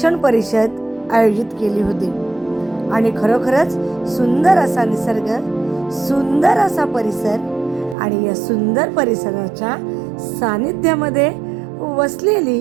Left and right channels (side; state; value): left; drops out; at 8.0 s